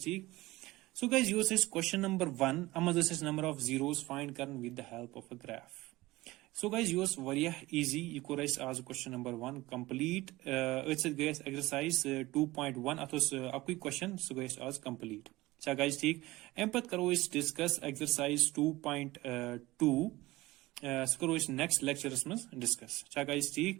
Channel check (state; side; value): quieter; left; 19.2 dB